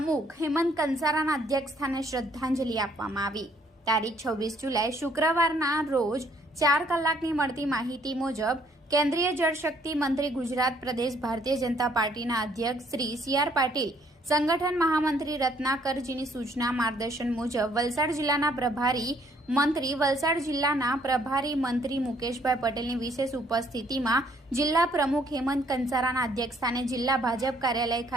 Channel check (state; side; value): normal; both; correlation 0.65